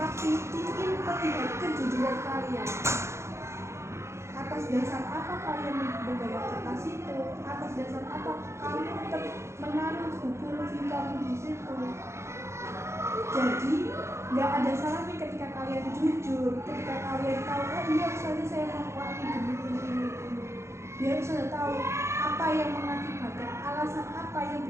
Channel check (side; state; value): left; late; 0.13 ms